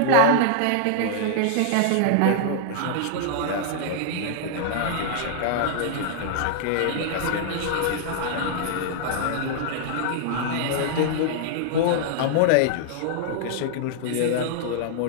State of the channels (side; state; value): both; different; correlation -0.01